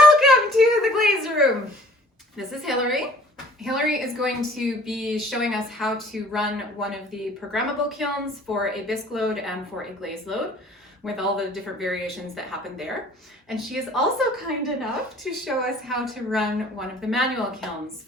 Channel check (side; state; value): both; normal; correlation 0.53